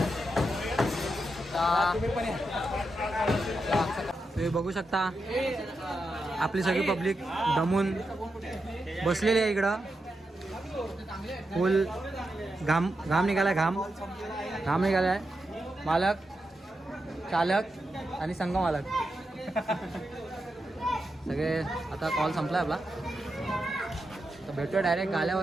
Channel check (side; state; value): both; normal; correlation 0.87